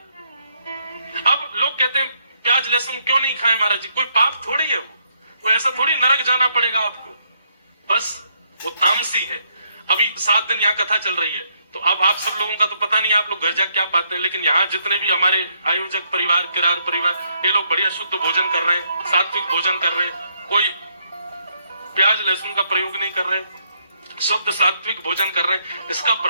अब लोग कहते हैं प्याज लहसुन क्यों नहीं खाएं महाराज जी, कोई पाप थोड़ी है वो ऐसा थोड़ी नरक जाना पड़ेगा आपको, बस वो तामसी है। अभी 7 दिन यहाँ कथा चल रही है, तो अब आप सब लोगों का तो पता नहीं आप लोग घर जाके क्या पाते हैं, लेकिन यहाँ जितने भी हमारे आयोजक परिवार, किरार परिवार, ये लोग बढ़िया शुद्ध भोजन कर रहे हैं, सात्विक भोजन कर रहे हैं, कोई प्याज लहसुन का प्रयोग नहीं कर रहे, शुद्ध सात्विक भोजन कर रहे हैं। इसका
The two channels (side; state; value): both; inverted; correlation -0.74